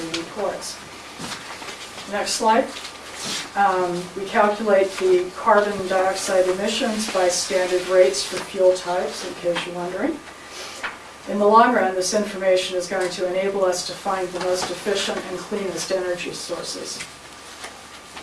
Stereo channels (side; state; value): both; identical; correlation 1.00